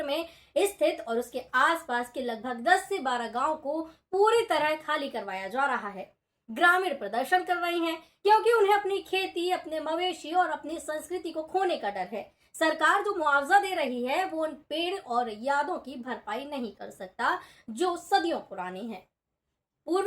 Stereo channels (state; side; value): identical; both; correlation 1.00